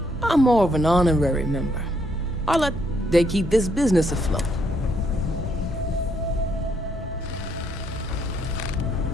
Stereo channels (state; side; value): normal; both; correlation 0.72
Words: I'm more of an honorary member. They keep this business afloat.